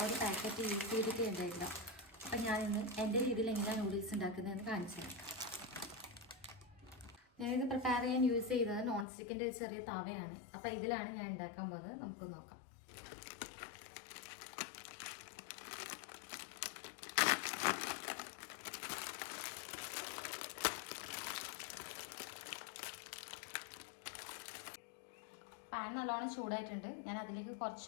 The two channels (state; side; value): drops out; right; at 9.1 s